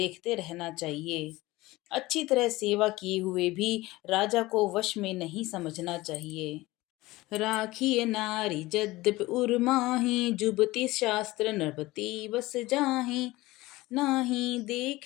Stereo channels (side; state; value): right; quieter; 19.5 dB